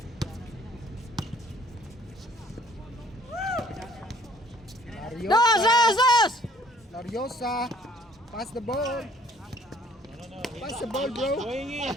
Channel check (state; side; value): normal; both; correlation 0.59